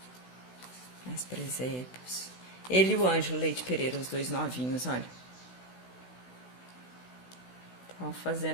Mais presépios. Ele e o Ângelo Leite Pereira, os dois novinhos, olha. Estavam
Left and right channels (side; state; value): right; late; 16 ms